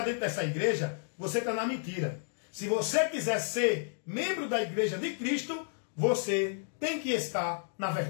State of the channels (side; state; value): right; silent; digital silence